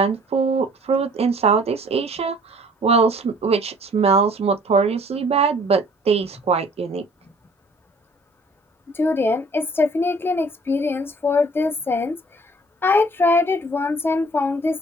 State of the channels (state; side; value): normal; both; correlation 0.54